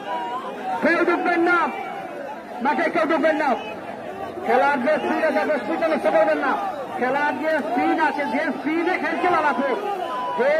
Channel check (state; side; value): identical; both; correlation 1.00